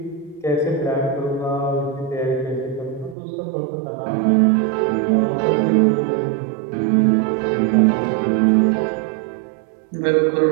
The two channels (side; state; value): left; drops out; at 3.2 s